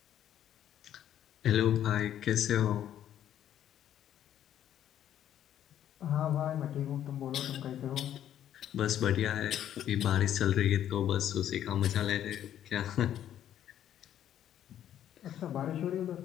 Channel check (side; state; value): right; quieter; 10.8 dB